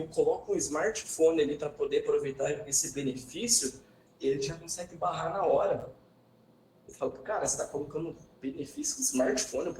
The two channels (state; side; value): identical; both; correlation 1.00